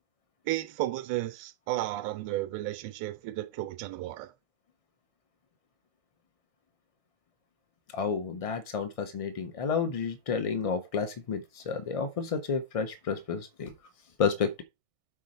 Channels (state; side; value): late; right; 1.6 ms